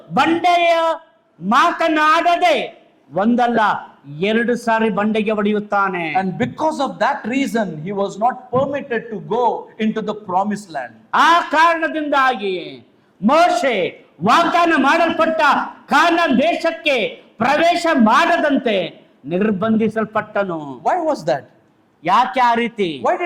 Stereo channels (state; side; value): identical; both; correlation 1.00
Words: ಬಂಡೆಯ ಮಾತನಾಡದೆ ಒಂದಲ್ಲ ಎರಡು ಸಾರಿ ಬಂಡೆಗೆ ಹೊಡೆಯುತ್ತಾನೆ. And because of that reason, he was not permitted to go into the promised land. ಆ ಕಾರಣದಿಂದಾಗಿ ಮೋಶೆ ವಾಗ್ದಾನ ಮಾಡಲ್ಪಟ್ಟ ಕಾನಾನ್ ದೇಶಕ್ಕೆ ಪ್ರವೇಶ ಮಾಡದಂತೆ ನಿರ್ಬಂಧಿಸಲ್ಪಟ್ಟನು. Why was that? ಯಾಕೆ ಆ ರೀತಿ? Why